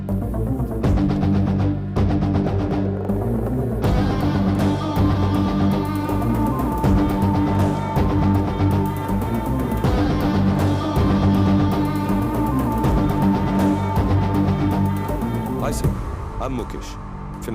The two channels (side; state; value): both; identical; correlation 1.00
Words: Hi sir, I'm Mukesh,